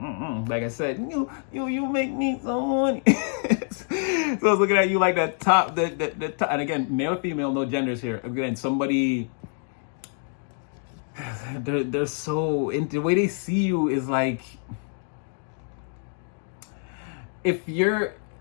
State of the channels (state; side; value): silent; right; 57 dB below the other